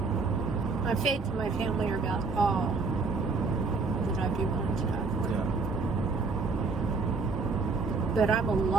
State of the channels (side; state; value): left; quieter; 4.2 dB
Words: My faith and my family are about all that I'd be willing to die for. Yeah. But I'm a